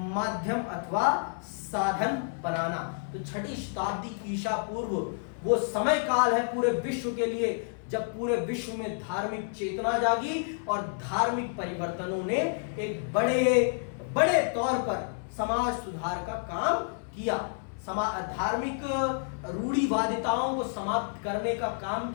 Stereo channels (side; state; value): right; silent; 57 dB below the other